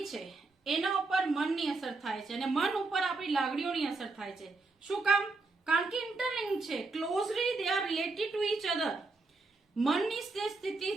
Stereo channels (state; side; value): quieter; left; 3.6 dB